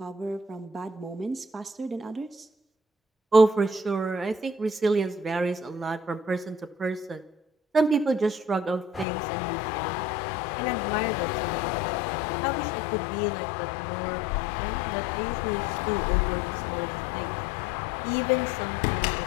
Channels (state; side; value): drops out; right; at 9.1 s